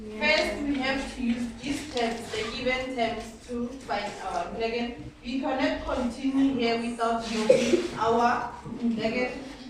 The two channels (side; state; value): both; identical; correlation 1.00